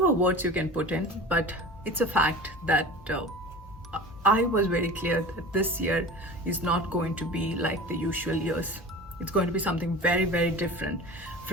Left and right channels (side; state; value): both; normal; correlation 0.35